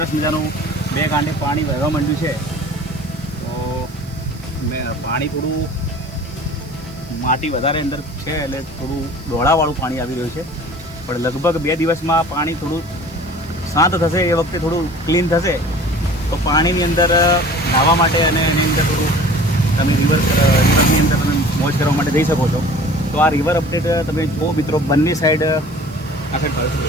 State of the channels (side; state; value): right; noise; hiss, 25 dB below the sound